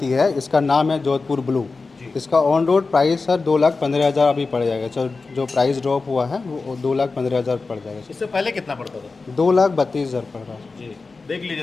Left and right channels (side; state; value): right; quieter; 4.0 dB